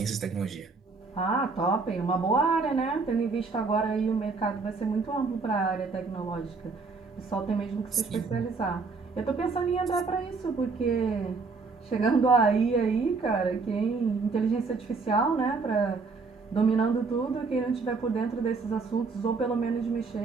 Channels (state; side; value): quieter; left; 4.3 dB